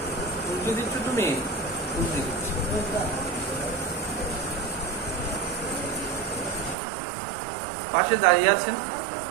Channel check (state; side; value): drops out; left; at 6.8 s